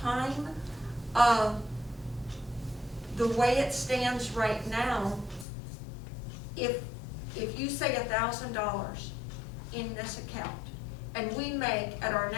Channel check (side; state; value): right; drops out; at 5.5 s